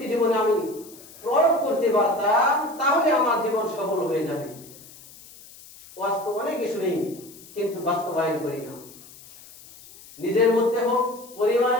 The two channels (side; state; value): left; noise; hiss, 20 dB below the sound